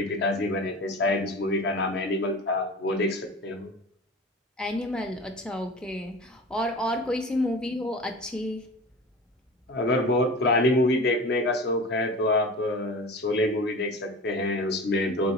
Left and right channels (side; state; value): both; normal; correlation 0.35